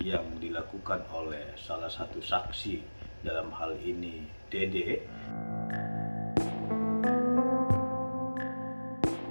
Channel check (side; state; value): both; inverted; correlation -1.00